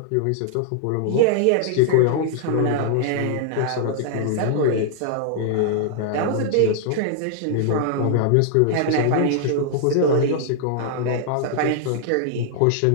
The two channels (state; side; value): different; both; correlation -0.01